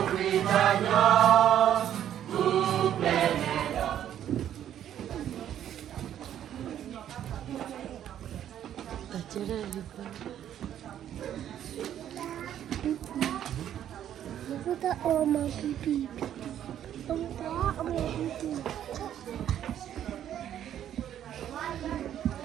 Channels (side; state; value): left; quieter; 10.6 dB